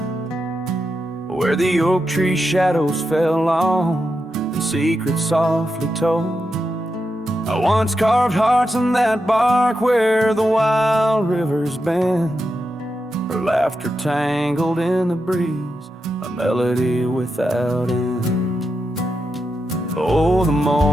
where the oak tree shadows fell long and secrets softly told. I once carved hearts on that bark where the wild rivers bend, her laughter tangled in the breeze, a melody without end. Oh, the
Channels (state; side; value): normal; both; correlation 0.87